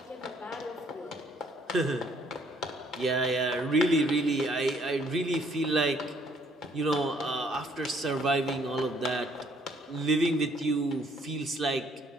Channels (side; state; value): both; normal; correlation 0.64